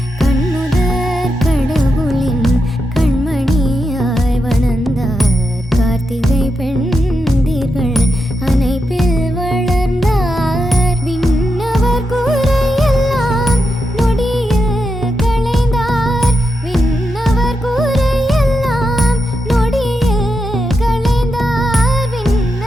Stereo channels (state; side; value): normal; both; correlation 0.86